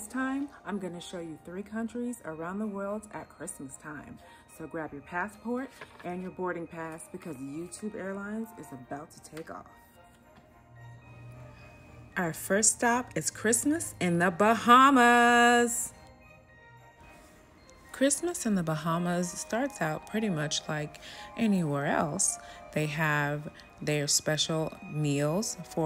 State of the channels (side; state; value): both; identical; correlation 1.00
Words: time, I'm going to show you 3 countries around the world at Christmas time. So grab your passport and your boarding pass because YouTube Airlines is about to take off. Our first stop is Christmas in the Bahamas. Christmas in the Bahamas starts out pretty much like anywhere else. They have their special meals